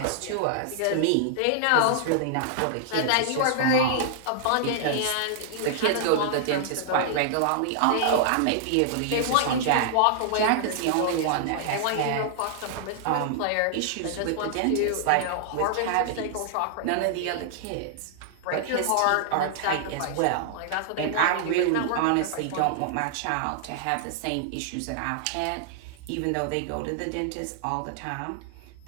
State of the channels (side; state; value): both; different; correlation -0.01